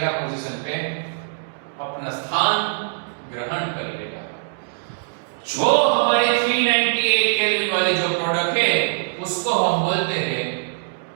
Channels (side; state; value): left; silent; digital silence